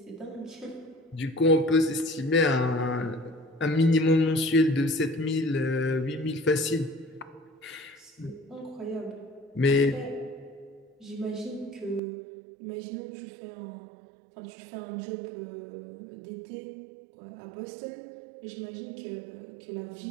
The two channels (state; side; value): drops out; left; at 12.0 s